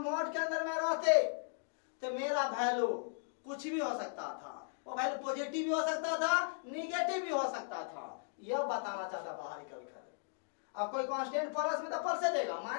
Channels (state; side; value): silent; right; digital silence